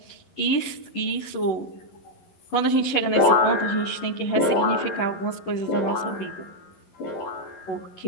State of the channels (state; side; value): late; right; 11 ms